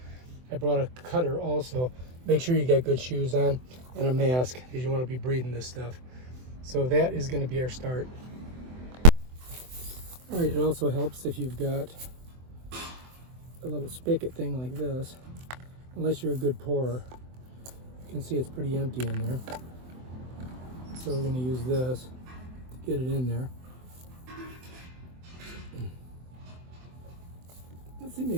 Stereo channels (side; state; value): left; late; 24 ms